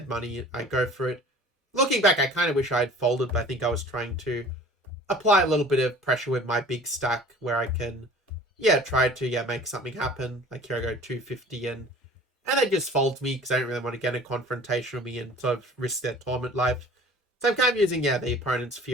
money. I go for it. Looking back, I kind of wish I had folded, but I think I was trying to apply a little bit of pressure with my big stack where I can, try to, make something happen. Like here I go 250 and they just fold me because I don't really want to get a confrontation with me and sort of risk their tournament life. So I'm kind of using, the opponent's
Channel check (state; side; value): normal; both; correlation 0.45